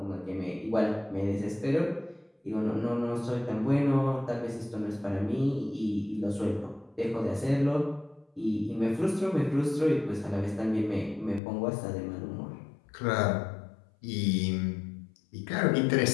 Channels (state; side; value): drops out; right; at 11.4 s